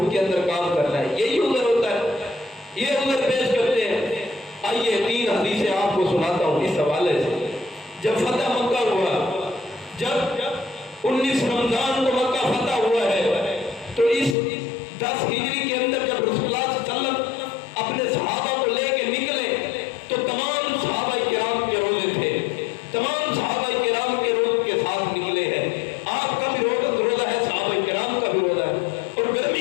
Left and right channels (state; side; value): drops out; right; at 14.4 s